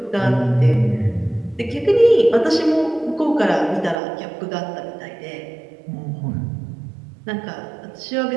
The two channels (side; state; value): left; drops out; at 4.0 s